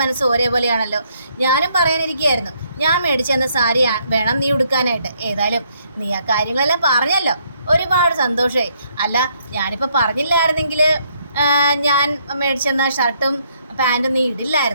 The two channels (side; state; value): both; inverted; correlation -0.71